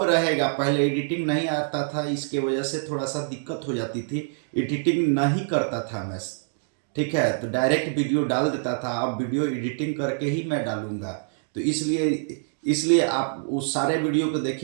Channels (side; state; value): left; silent; digital silence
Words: रहेगा। पहले एडिटिंग नहीं आता था, इसके वजह से थोड़ा सा दिक्कत हो जाती थी, एडिटिंग नहीं करता था मैं, ठीक है। तो डायरेक्ट वीडियो डाल देता था, अब वीडियो एडिटिंग करके ही मैं डालूंगा। तो इसलिए इसलिए आप उस सारे वीडियो को